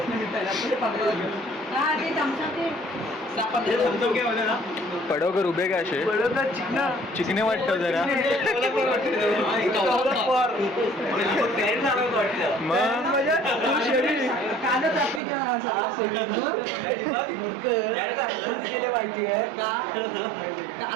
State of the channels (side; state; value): left; drops out; at 15.2 s